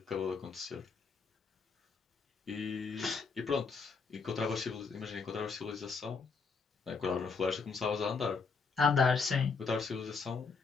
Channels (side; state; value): right; quieter; 5.0 dB